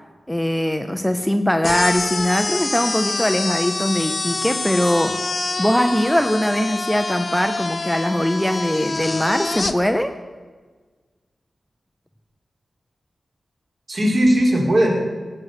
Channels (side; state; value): both; normal; correlation 0.97